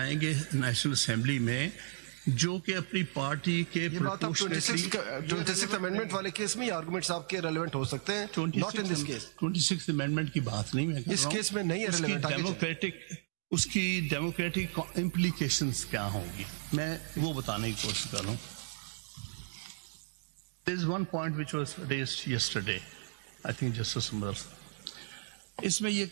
नेशनल असेंबली में जो कि अपनी पार्टी के ये बात आप 26th अमेंडमेंट वाले केस में आर्गुमेंट्स आपके रेलेवेंट हो सकते हैं, not in this case. 26th amendment की बात नहीं मैं कर रहा हूं, इस केस में नहीं है रेलेवेंट। उसकी डेमोक्रेटिक इम्प्लीकेशंस क्या होंगी, मैं वो बताने की कोशिश कर रहा हूं। There is one point which was raised yesterday, I think Justice Umar, इसमें ये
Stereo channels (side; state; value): left; silent; digital silence